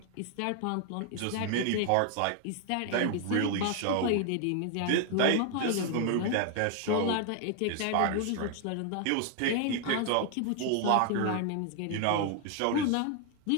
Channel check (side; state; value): both; different; correlation 0.00